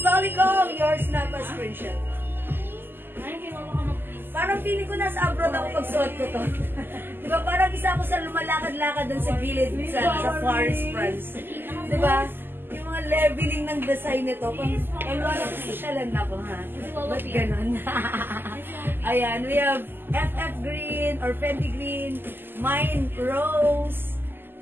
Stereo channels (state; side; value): late; left; 0.097 ms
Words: Yours na pa screenshot. Ay, kinuha ka mag-please. Parang feeling ko nasa abroad ako pag suot ko to. Diba? Parang isa ako sa lumalakad-lakad dun sa gilid sa Paris, France. Diba? Yung mga leveling ng design nito. Pang wala ko sosyalan na ko, ha? Ba't ganun? Ayan, we have FF Green or Fendi Green, Mine Rose,